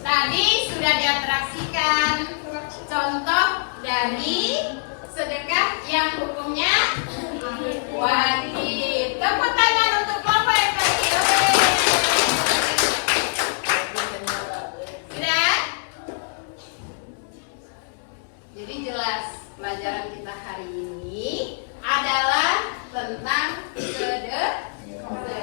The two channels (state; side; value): silent; right; 63 dB below the other